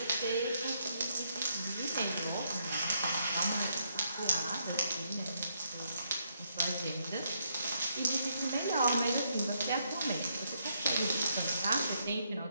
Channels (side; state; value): both; inverted; correlation -0.76